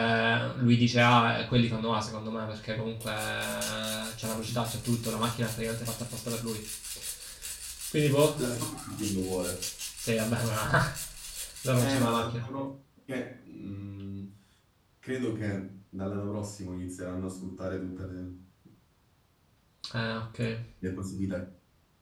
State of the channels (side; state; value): both; identical; correlation 1.00